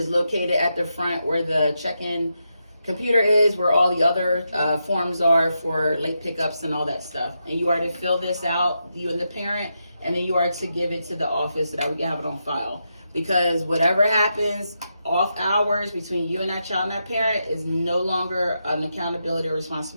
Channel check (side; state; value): both; inverted; correlation -0.85